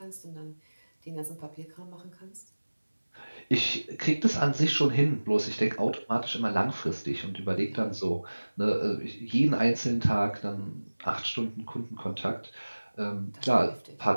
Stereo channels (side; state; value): both; inverted; correlation -1.00